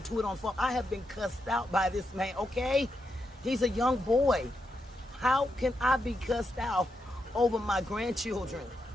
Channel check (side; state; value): both; normal; correlation 0.83